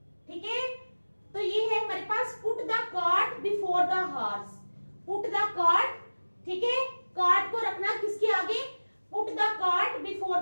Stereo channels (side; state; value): both; inverted; correlation -1.00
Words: ठीक है, तो ये है हमारे पास put the cart before the horse. Put the cart, ठीक है, कार्ट को रखना किसके आगे? Put the cart before